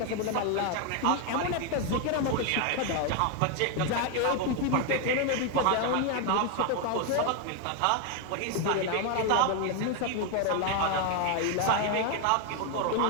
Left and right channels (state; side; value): different; both; correlation 0.01